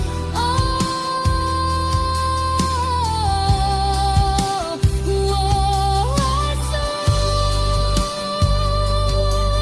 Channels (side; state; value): both; identical; correlation 1.00